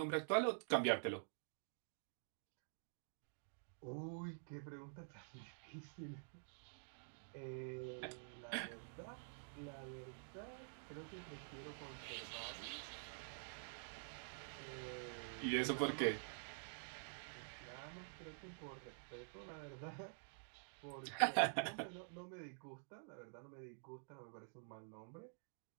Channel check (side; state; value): left; silent; digital silence